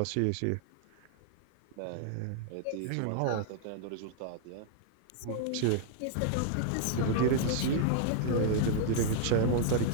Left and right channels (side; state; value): both; different; correlation -0.01